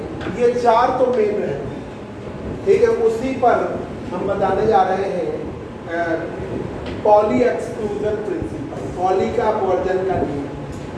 ये 4 तो मेन है। ठीक है, उसी पर हम बताने जा रहे हैं पॉली एक्सक्लूजन प्रिंसिपल, पॉली का वर्जन का नियम,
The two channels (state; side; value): identical; both; correlation 1.00